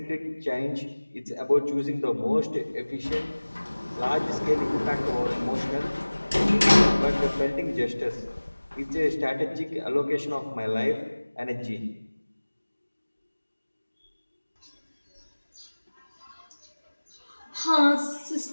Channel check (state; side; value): inverted; both; correlation -1.00